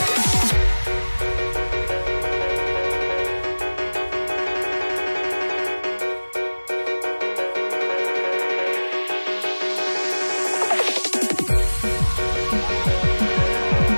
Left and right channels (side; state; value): both; inverted; correlation -1.00